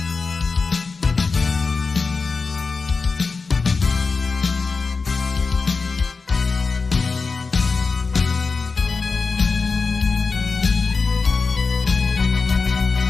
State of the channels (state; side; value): quieter; right; 4.4 dB